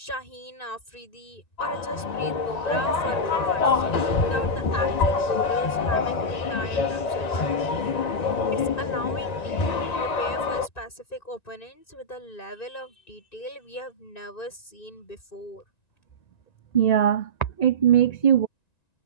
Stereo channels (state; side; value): late; right; 1.9 ms